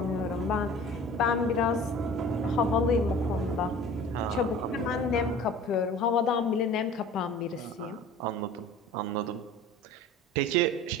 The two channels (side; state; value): both; normal; correlation 0.43